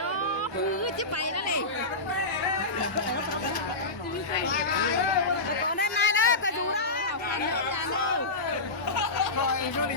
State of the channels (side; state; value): right; quieter; 3.1 dB